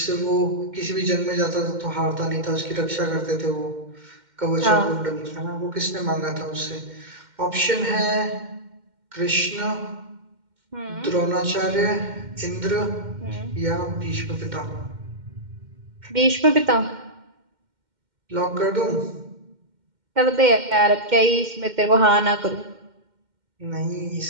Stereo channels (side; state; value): left; late; 2.1 ms